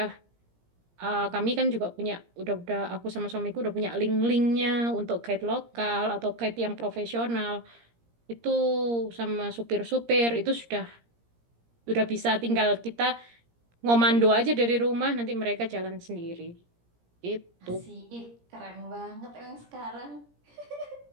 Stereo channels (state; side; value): late; left; 17 ms